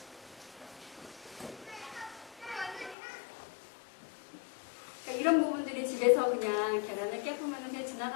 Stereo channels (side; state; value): right; drops out; at 3.0 s